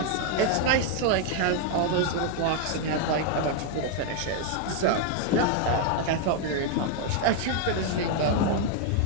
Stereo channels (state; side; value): different; both; correlation 0.00